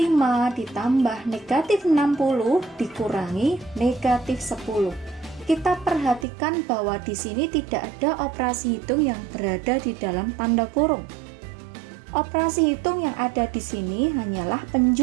ditambah negatif 60 dikurangi negatif 10. Kita perhatikan bahwa di sini tidak ada operasi hitung yang berada di dalam tanda kurung. Operasi hitung yang ada di sini hanyalah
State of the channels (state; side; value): drops out; left; at 6.2 s